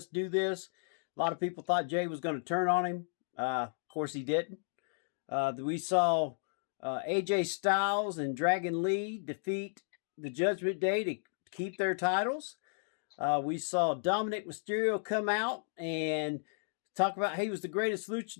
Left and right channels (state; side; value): silent; right; digital silence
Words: do this." A lot of people thought Jay was going to turn on him. Of course, he didn't. We saw AJ Styles and Dragon Lee defeat the Judgment Day to keep their titles. We saw Dominic Mysterio come out and talk about he was the greatest